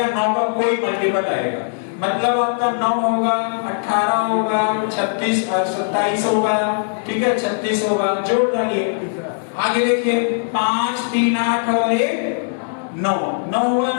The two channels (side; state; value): right; silent; digital silence